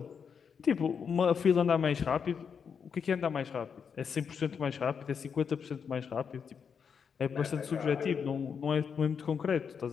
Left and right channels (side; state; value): right; quieter; 6.6 dB